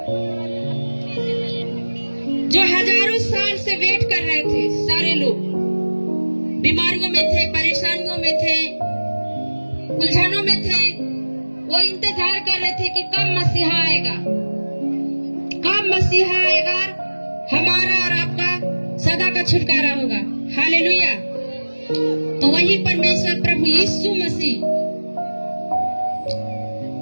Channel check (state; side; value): inverted; both; correlation -1.00